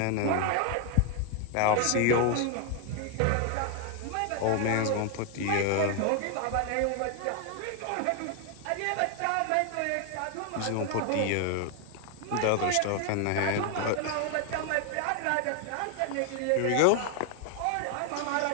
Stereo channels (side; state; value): both; different; correlation 0.00